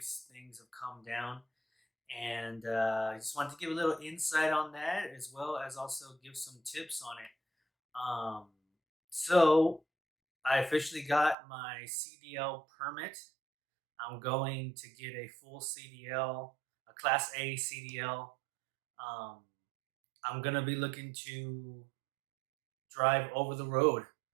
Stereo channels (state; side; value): drops out; left; at 11.4 s